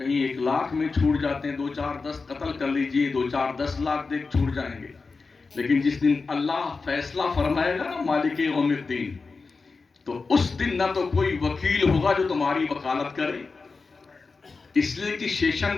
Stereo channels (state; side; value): quieter; right; 4.3 dB